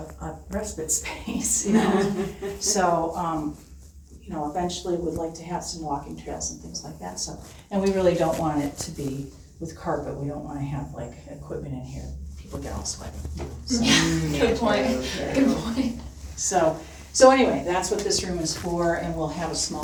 respite space, you know? So, you know, eventually we'd like to have some walking trails and things like that, so. And we really don't want it to be with carpet, we don't wanna have like equipment in here, people get all sweaty. So, Good point. Good point. So anyway, that's what this room is for, and we'll have a small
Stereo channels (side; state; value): both; identical; correlation 1.00